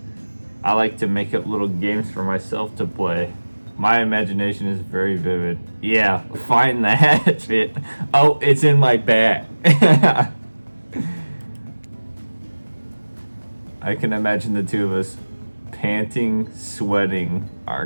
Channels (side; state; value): both; inverted; correlation -1.00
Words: I like to make up little games for myself to play. My imagination is very vivid. Yeah, find the hatchet. Oh, it's in my bag. I can imagine the two of us panting, sweating, our